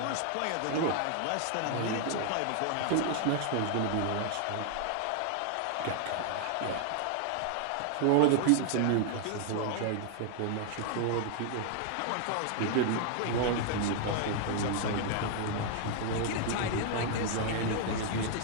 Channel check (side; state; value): both; different; correlation 0.00